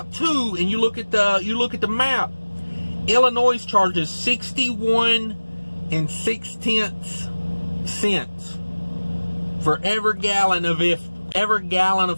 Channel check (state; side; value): inverted; both; correlation -1.00